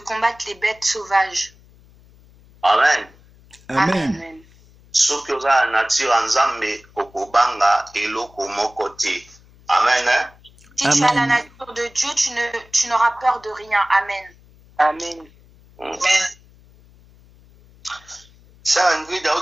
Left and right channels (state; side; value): noise; left; hum, 27 dB below the sound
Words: les bêtes sauvages. Amen. Amen. Soki oza na nature ya Nzambe okobanga eloko moko te. Amen. Si tu as la nature de Dieu, tu n'auras peur de rien. Amen. Amen. Sœur Ingrid